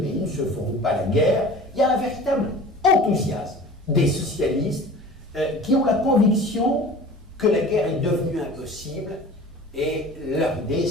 ne se feront pas la guerre. Il y a un véritable enthousiasme des socialistes qui ont la conviction que la guerre est devenue impossible, et leur idée,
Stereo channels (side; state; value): both; normal; correlation 0.41